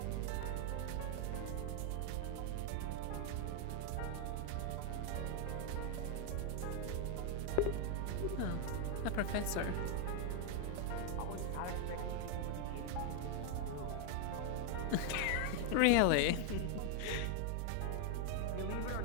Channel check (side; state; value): both; different; correlation 0.00